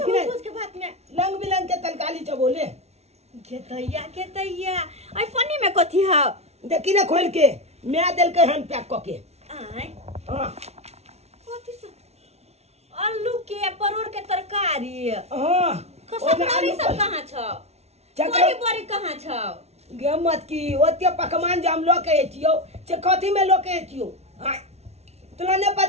भोज के भात में रंग बिरंग के तरकारी चबोले के तैया आई पन्नी में कथी है देखी ना खोल के मैं दिल के हन पैक क के आय हां कथी सब आलू के परोड़ के तरकारी हां कसमरी सब कहां छ चकरी बड़ी कहां छ गे मत की ओते पकवान जे हम लोग के एतियो से कथी में लोग के एतियो हां तोरा ने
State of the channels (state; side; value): late; left; 0.31 ms